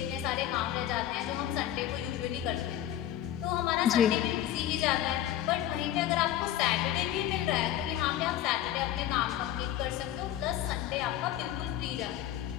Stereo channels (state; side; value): quieter; right; 12.1 dB